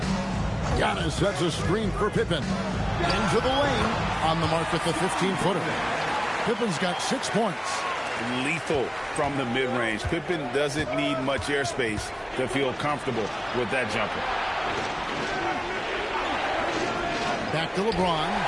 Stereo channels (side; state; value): both; identical; correlation 1.00